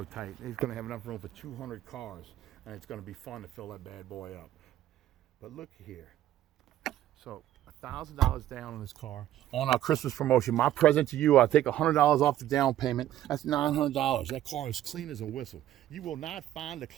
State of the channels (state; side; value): quieter; left; 12.8 dB